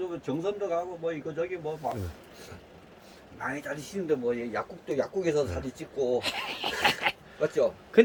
정선도 가고 뭐 이거 저기 뭐 막 많이 다니시는데 뭐 약국에서 사진 찍고 맞죠?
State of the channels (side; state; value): both; identical; correlation 1.00